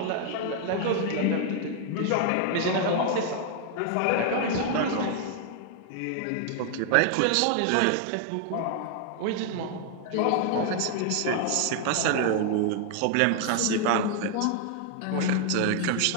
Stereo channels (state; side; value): different; both; correlation 0.00